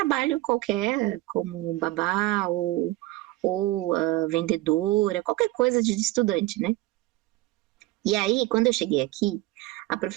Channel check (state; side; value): quieter; left; 18.4 dB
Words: qualquer, como babá ou vendedora, qualquer coisa de estudante, né? E aí, quando eu cheguei aqui, a